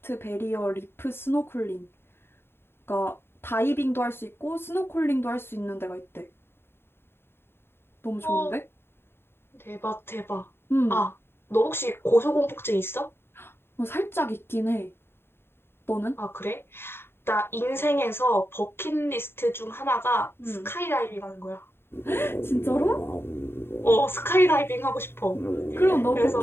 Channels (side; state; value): right; late; 0.11 ms